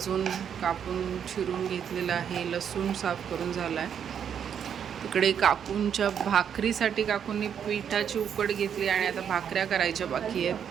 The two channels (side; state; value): left; quieter; 8.2 dB